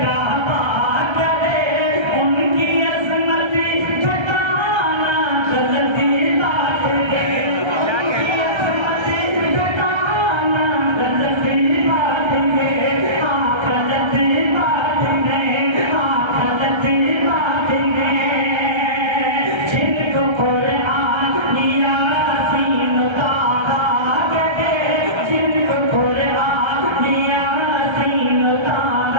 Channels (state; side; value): late; left; 1.3 ms